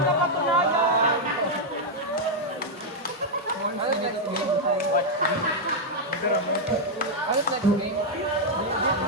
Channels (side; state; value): both; normal; correlation -0.02